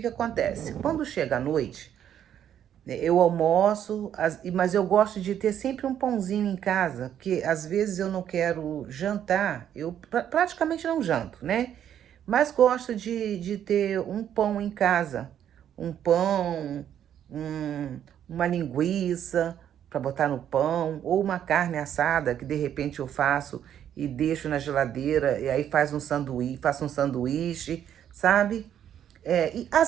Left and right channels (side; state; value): left; quieter; 9.9 dB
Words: acontece? Quando chega a noite, né, eu almoço, mas eu gosto de ter sempre um pãozinho em casa, porque às vezes eu não quero jantar, eu praticamente não janto, né? Mas gosto de ter um pão em casa, um pão, uma linguiça para botar no pão, ou uma carne assada que de repente eu faço e deixo na geladeira, e aí faço um sanduíche, sabe? E